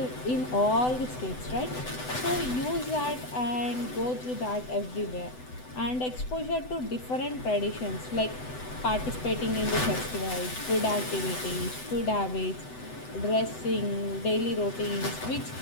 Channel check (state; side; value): late; right; 7.9 ms